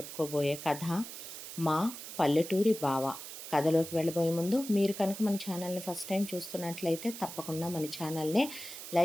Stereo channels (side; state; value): right; noise; hiss, 10 dB below the sound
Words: కథ మా పల్లెటూరి బావ. కథలోకి వెళ్ళబోయే ముందు మీరు కనుక మన ఛానల్ని ఫస్ట్ టైం చూస్తున్నట్లయితే తప్పకుండా మన ఛానల్ని